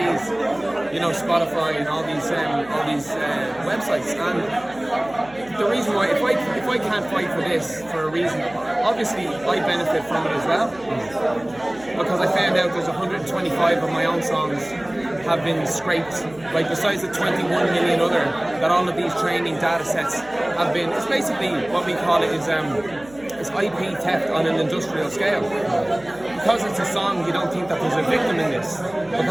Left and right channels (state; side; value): noise; right; hum, 23 dB below the sound